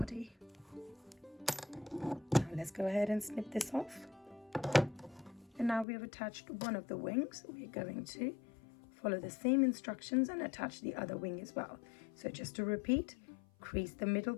Now let's go ahead and snip this off. And now we have attached one of the wings. We're going to follow the same instructions and attach the other wing as well. So just to repeat, crease the middle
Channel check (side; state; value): right; drops out; at 5.9 s